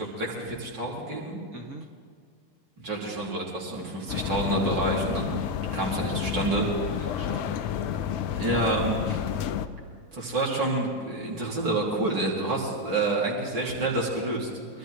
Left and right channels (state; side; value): late; left; 5.4 ms